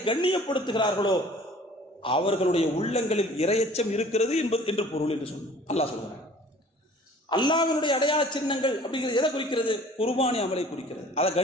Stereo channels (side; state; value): both; normal; correlation 0.49